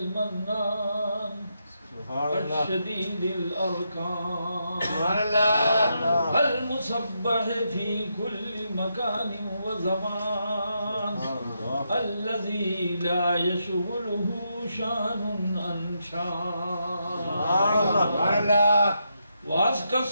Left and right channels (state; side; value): inverted; both; correlation -0.82